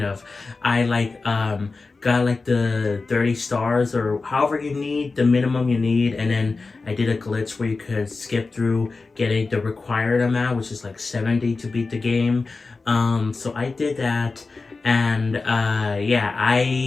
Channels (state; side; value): quieter; right; 3.9 dB